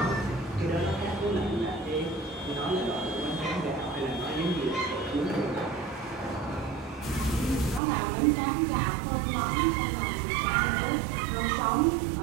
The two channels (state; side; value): drops out; left; at 7.8 s